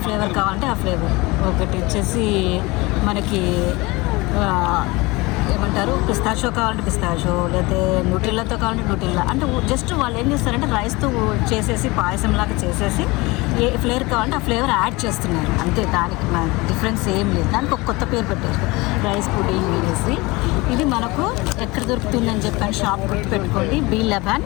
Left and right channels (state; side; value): quieter; right; 23.3 dB